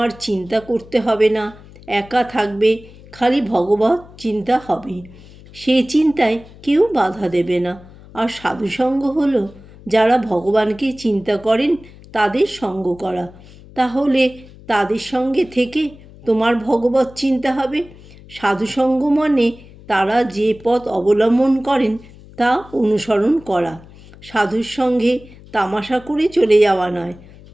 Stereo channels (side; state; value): left; noise; hum, 21 dB below the sound